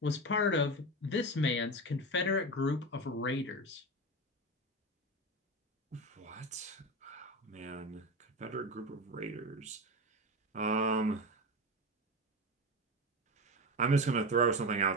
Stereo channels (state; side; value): normal; both; correlation 0.21